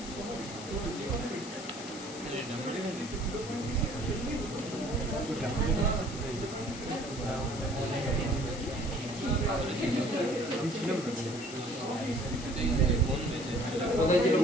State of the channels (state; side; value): noise; left; hiss, 13 dB below the sound